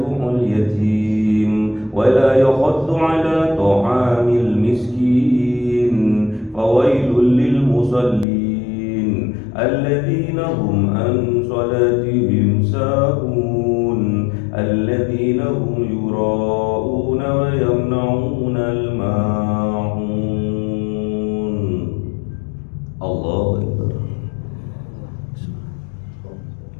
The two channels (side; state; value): right; drops out; at 8.2 s